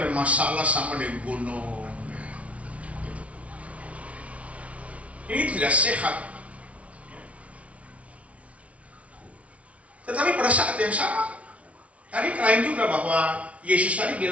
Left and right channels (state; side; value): late; left; 0.064 ms